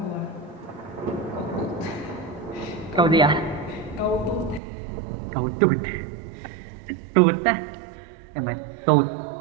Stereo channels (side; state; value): left; drops out; at 4.6 s